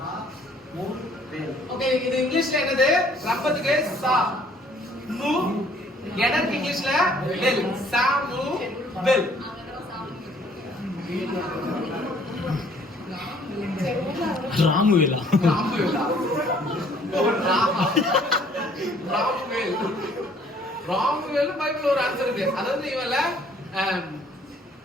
ஓகே, இது இங்கிலீஷ்ல என்னது? ரப்பத்துக்கு சா மு, எனக்கு இங்கிலீஷ்ல வெல். சாமு வெல். ராமுவேலா. ராமுவேலா. ராமுவேல். ராமுவேல் பைபிள்ல ஒரு ஆன்சர் இருக்கு. அதாவது இவல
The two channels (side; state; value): both; normal; correlation 0.59